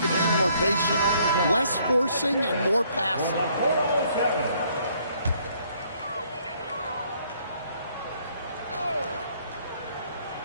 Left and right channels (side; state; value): both; inverted; correlation -0.65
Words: to be more patient. Less forcing and more passing.